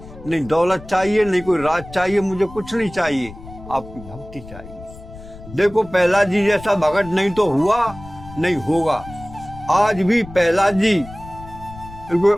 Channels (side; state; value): left; noise; rumble, 16 dB below the sound